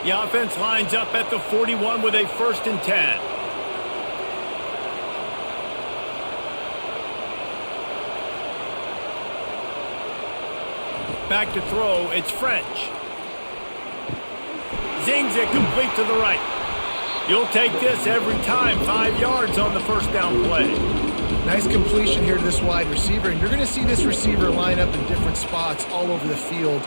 The offense lines up at the 41 with a 1st and 10. Back to throw, it's French. Zings it complete to the right. You'll take this every time. 5 yards on the first down play. Nice completion here to this wide receiver, and you're going to see this receiver line up in different spots all over the field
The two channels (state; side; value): inverted; both; correlation -1.00